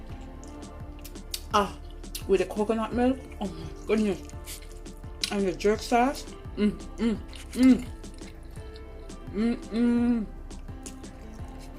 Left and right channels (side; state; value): both; identical; correlation 1.00